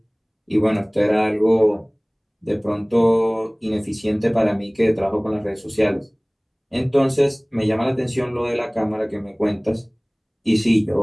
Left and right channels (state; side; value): identical; both; correlation 1.00